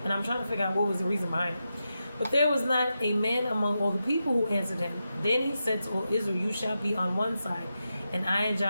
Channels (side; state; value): both; inverted; correlation -0.89